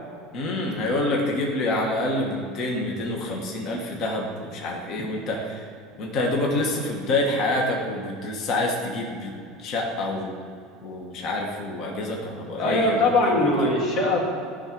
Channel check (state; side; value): normal; both; correlation 0.32